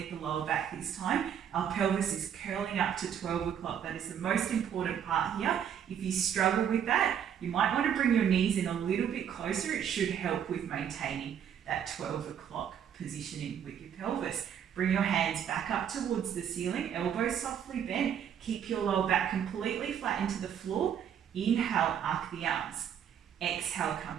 the lower back this time. Our pelvis is curling up to 12 o'clock. That is the most important part here. If you struggle with that, you might want to bring your knees in a little bit closer. It should help with maintaining that 12 o'clock positioning with your pelvis. Bring your hands back up towards the ceiling, elbows softly bent. Keep your lower back completely flat into the floor. Inhale, arc the arms. Exhale,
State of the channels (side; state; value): left; quieter; 8.8 dB